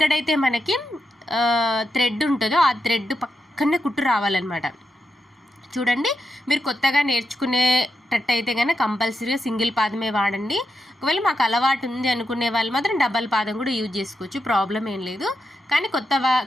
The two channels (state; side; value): normal; both; correlation 0.86